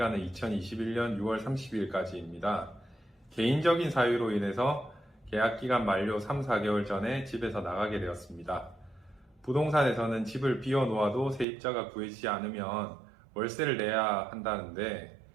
2021년 6월 30일까지입니다. 개인적인 사유로 인해서 계약 기간 만료 3, 4개월 전에 집에서 나가게 되었습니다. 부동산에서는 집을 비워놓아도 세입자가 구해지지 않으면 월세를 내야 한다는데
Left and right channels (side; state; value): left; drops out; at 11.5 s